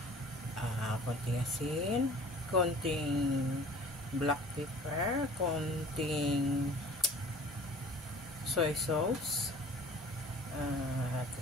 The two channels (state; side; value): normal; both; correlation 0.46